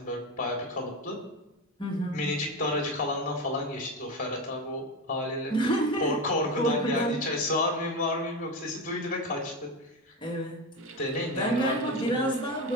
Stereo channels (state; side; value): normal; both; correlation 0.19